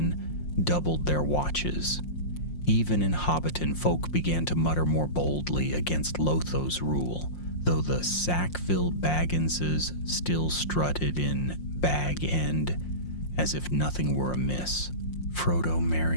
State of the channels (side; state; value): right; late; 5.6 ms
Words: doubled their watches. Even in Hobbiton, folk began to mutter more boldly against Lotho's rule, though the Sackville Bagginses still strutted in Bag End as if nothing were amiss. Frodo,